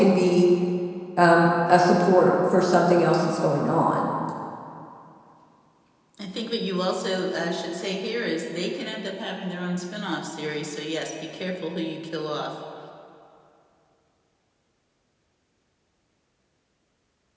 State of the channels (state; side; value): identical; both; correlation 1.00